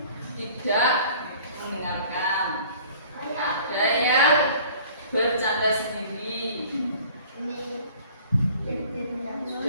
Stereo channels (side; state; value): both; inverted; correlation -0.50